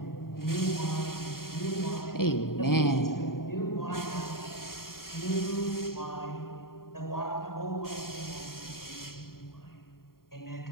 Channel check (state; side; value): late; right; 0.93 ms